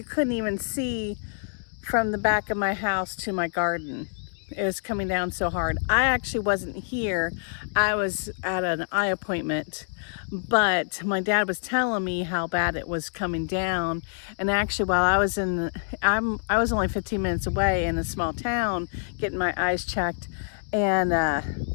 couldn't even see from the back of my house to my garden. It was coming down so hard. I actually wasn't here. I was at an eye appointment, but my dad was telling me how bad it was coming down. And actually, while I was I was only 15 minutes away in a small town getting my eyes checked, and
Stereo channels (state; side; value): silent; right; digital silence